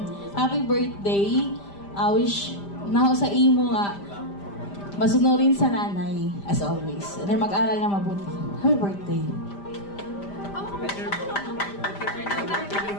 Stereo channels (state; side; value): late; right; 5.0 ms